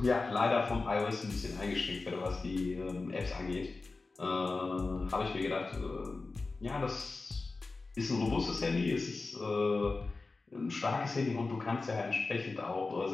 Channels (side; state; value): right; quieter; 3.7 dB